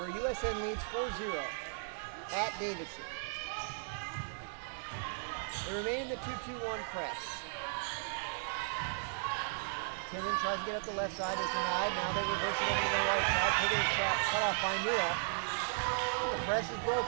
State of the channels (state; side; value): silent; left; digital silence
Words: USN leads 4-0 at Davidson. They remain in the 2-2-1 press. Tinnin tries to get up the left side, is denied. Now they reverse it over to the right side. Piggott is cut off by Neal, but the press is